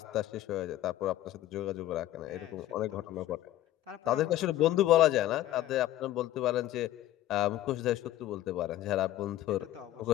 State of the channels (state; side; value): quieter; right; 14.2 dB